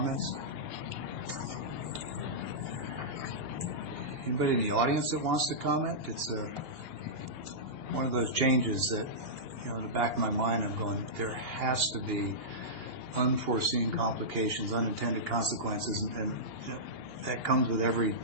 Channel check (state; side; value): late; left; 2.8 ms